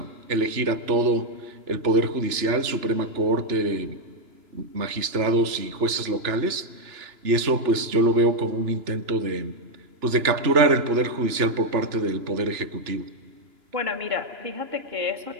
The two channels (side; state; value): left; late; 2.9 ms